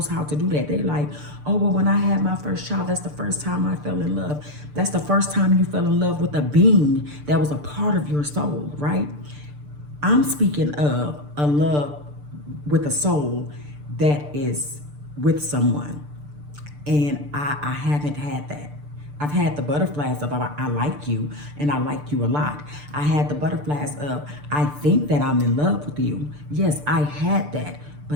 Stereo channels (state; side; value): late; left; 6.8 ms